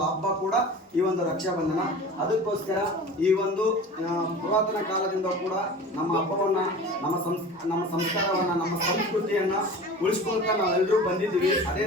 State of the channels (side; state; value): both; normal; correlation 0.37